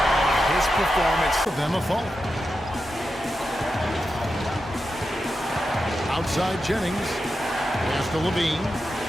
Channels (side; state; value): both; normal; correlation 0.89